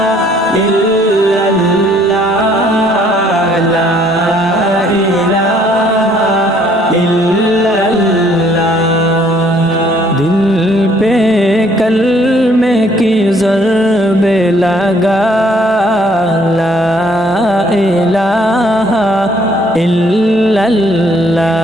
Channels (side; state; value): both; normal; correlation 0.63